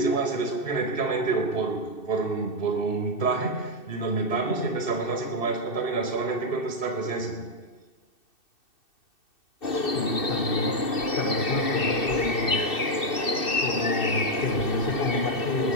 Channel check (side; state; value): right; late; 2.6 ms